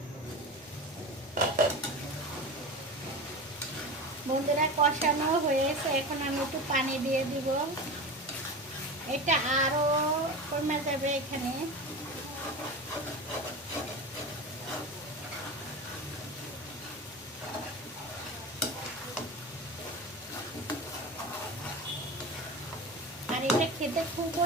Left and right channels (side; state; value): left; noise; rumble, 29 dB below the sound